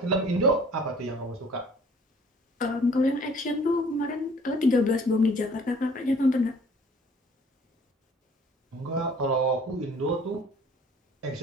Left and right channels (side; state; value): both; normal; correlation 0.54